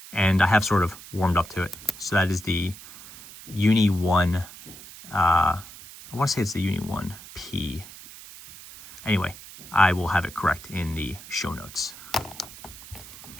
and I have sort of warmed up to it. So that is the Uni 1, I want to say it's the Uni 1P. Anyway, I will have it correct in the show notes.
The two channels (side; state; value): right; noise; hiss, 17 dB below the sound